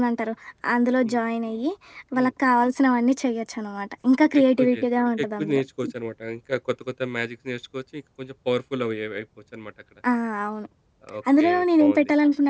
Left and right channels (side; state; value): both; identical; correlation 1.00